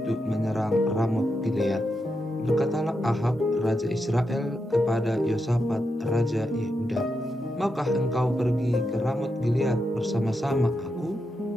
menyerang Ramot Gilead. Berkatalah Ahab, raja Israel, kepada Yosafat, raja Yehuda, "Maukah engkau pergi ke Ramot Gilead bersama-sama aku?"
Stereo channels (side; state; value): both; normal; correlation 0.85